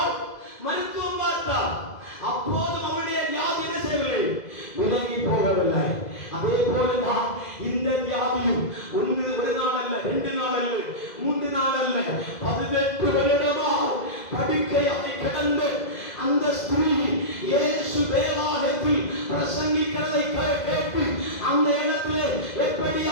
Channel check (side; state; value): right; late; 2.0 ms